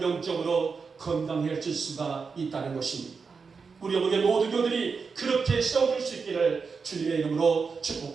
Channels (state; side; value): quieter; left; 5.2 dB